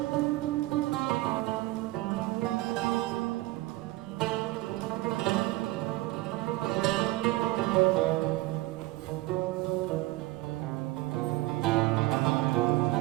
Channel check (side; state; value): left; quieter; 19.0 dB